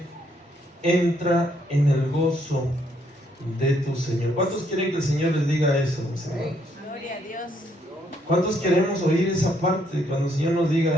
Entra en el gozo de tu Señor. ¿Cuántos quieren que el Señor les diga eso, mis hermanos? Gloria a Dios. ¿Cuántos queremos oír esa parte cuando el Señor nos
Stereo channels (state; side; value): normal; both; correlation 0.71